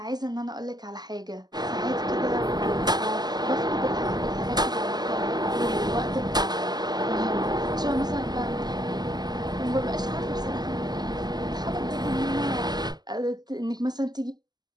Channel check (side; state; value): left; late; 0.20 ms